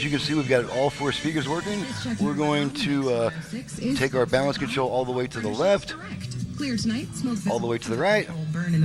you can see, we've got all 4 speakers working. We're going to take our balance control all the way to the left. Clear tonight. Smoke all the way to the right. Burn in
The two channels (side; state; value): both; identical; correlation 1.00